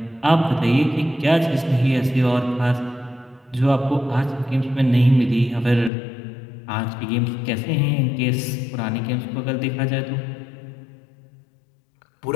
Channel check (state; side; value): drops out; right; at 5.9 s